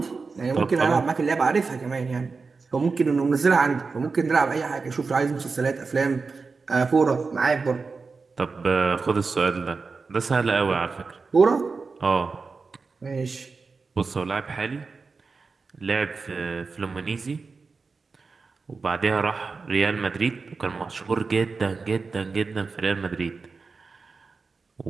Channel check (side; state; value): left; quieter; 4.5 dB